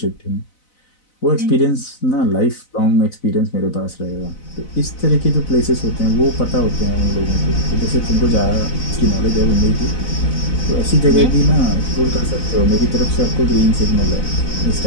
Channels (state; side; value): late; right; 4.0 ms